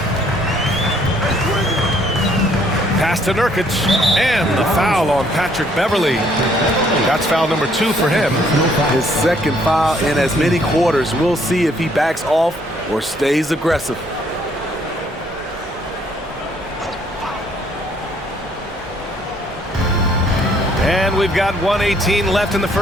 Pass to Nurkic, and the foul on Patrick Beverley. That's foul number 2 for him. His second foul in as many quarters. We'll see if he backs off or stays aggressive. And we've got 1:18 left in the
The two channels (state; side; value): normal; both; correlation 0.65